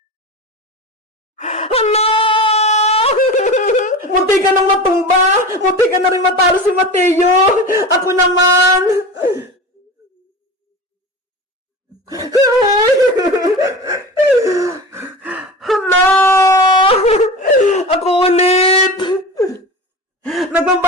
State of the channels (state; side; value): normal; both; correlation 0.30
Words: Hala! Munti ka nang matumba. Munti ka na rin matalo si Mateo. Ako naman. Hala! Ako ulit!